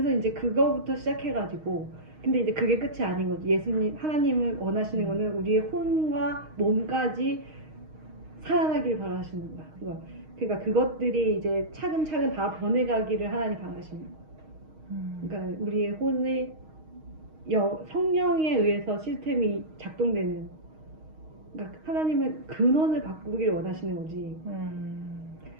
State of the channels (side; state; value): left; late; 6.4 ms